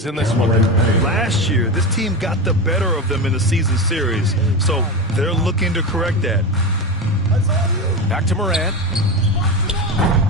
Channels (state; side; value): normal; both; correlation 0.20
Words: in this one. Last year, this team got the better of them in the season series, so they're looking to correct that. Back to Morant.